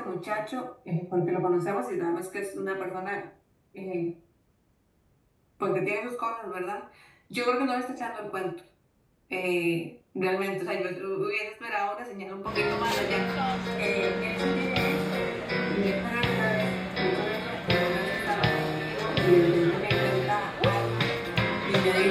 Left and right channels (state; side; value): identical; both; correlation 1.00